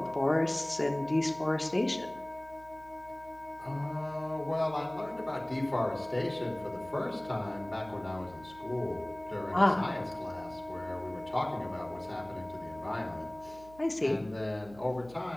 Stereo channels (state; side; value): noise; right; hum, 20 dB below the sound